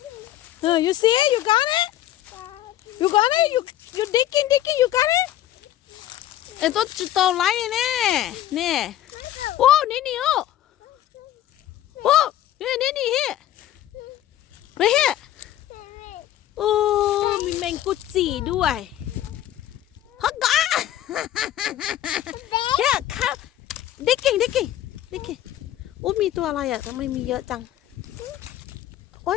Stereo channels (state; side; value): quieter; right; 12.8 dB